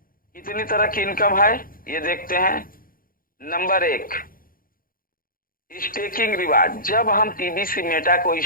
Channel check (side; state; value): right; late; 0.41 ms